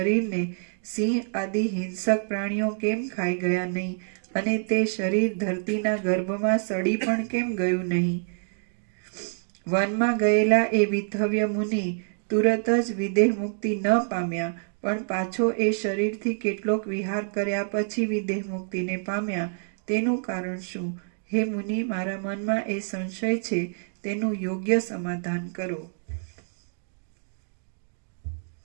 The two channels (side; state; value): left; silent; digital silence